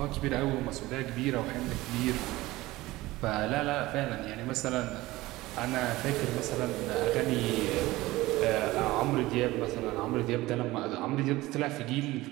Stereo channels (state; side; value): quieter; left; 18.7 dB